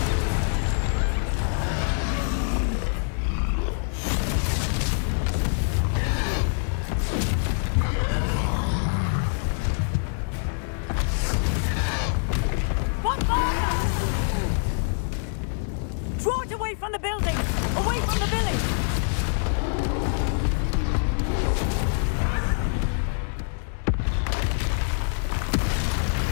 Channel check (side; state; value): right; silent; digital silence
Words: Draw it away from the building! Away from the village!